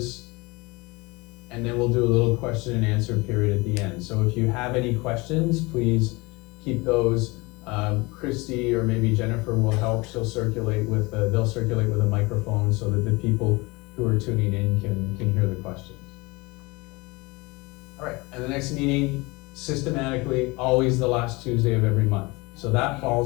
and then we'll do a little question and answer period at the end. So if you have any questions, please keep those. Christy or maybe Jennifer will help. They'll circulate with a microphone so that the people who are tuning in can hear the questions. All right, and the next meeting, systematically, always the last Tuesday of every month. So that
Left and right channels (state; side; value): quieter; right; 24.6 dB